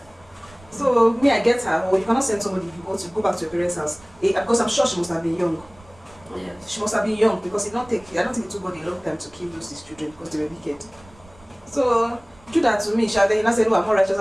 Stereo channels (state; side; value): noise; right; rumble, 26 dB below the sound